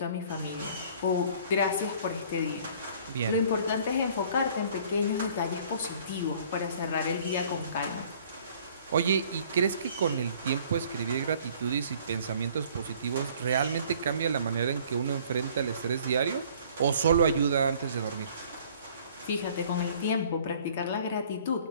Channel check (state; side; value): inverted; both; correlation -0.54